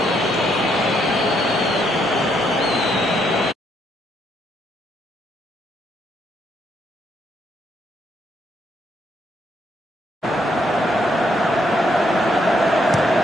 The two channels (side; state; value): both; normal; correlation 0.74